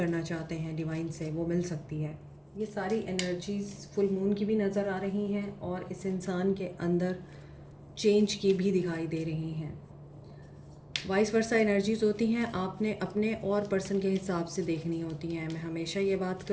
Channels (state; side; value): identical; both; correlation 1.00